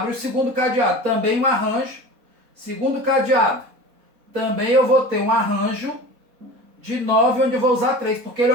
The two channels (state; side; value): late; left; 4.1 ms